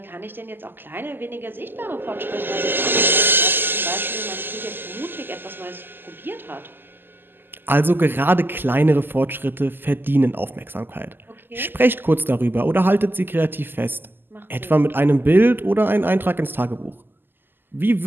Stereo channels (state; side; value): late; left; 0.095 ms